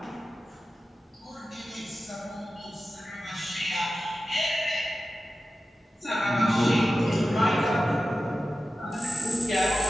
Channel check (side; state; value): both; normal; correlation 0.93